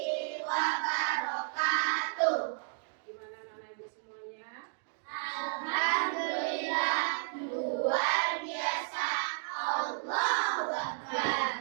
wabarakatuh. Gimana anak ibu semuanya? Alhamdulillah, luar biasa. Allahu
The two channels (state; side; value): silent; left; digital silence